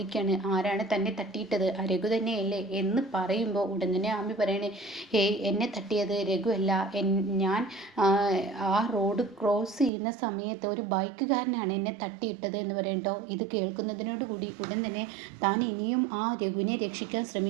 ആരാണ് തന്നെ തട്ടിയിട്ടത്? രഘു തന്നെയല്ലേ എന്ന് പറയുമ്പോൾ ഉടൻ തന്നെ ആമി പറയണേ, എന്നെ തട്ടിയത് രഘു അല്ല. ഞാൻ ആ റോഡ് ക്രോസ് ചെയ്യുന്ന സമയത്ത് ഒരു ബൈക്കുകാരനാണ് എന്നെ തട്ടിയിട്ടത് എന്ന് പറയട്ടോ. ഇത് കേൾക്കുന്നതിനോട് കൂടി ഉടൻ തന്നെ താൻ ഇനിയും ആ രഘുവിനെ രക്ഷിക്കാൻ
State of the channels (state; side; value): drops out; left; at 9.9 s